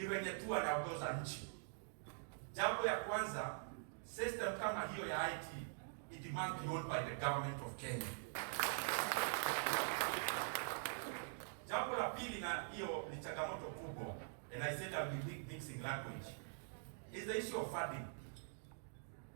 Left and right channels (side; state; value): left; silent; digital silence